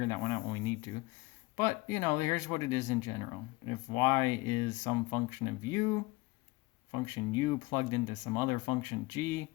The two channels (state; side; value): quieter; right; 22.5 dB